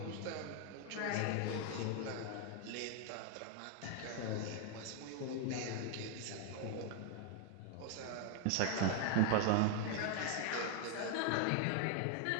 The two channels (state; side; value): different; both; correlation 0.00